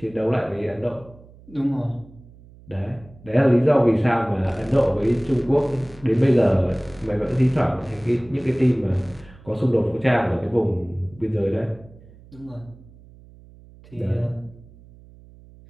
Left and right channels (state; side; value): noise; right; hum, 23 dB below the sound